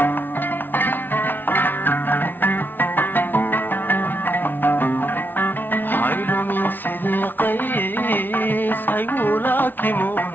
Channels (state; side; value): late; right; 0.092 ms